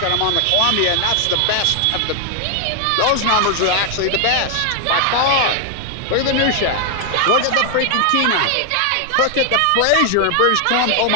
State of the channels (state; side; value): different; both; correlation 0.00